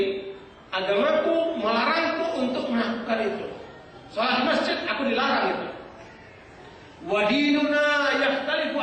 Agamaku melarangku untuk melakukan itu. Salat di masjid aku dilarang itu. Wa dinuna yakhtalifu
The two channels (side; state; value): both; identical; correlation 1.00